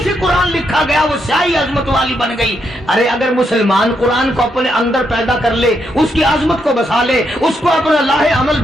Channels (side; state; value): both; normal; correlation 0.79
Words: سے قرآن لکھا گیا وہ سیاہی عظمت والی بن گئی۔ ارے اگر مسلمان قرآن کو اپنے اندر پیدا کر لے، اس کی عظمت کو بسا لے، اس کو اپنا لاہ عمل